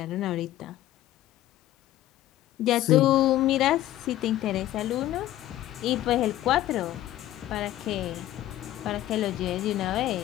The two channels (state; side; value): quieter; right; 14.1 dB